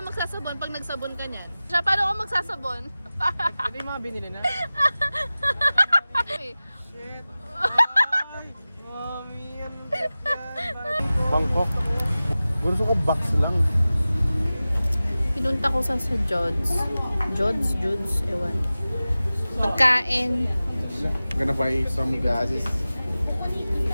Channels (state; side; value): inverted; both; correlation -0.96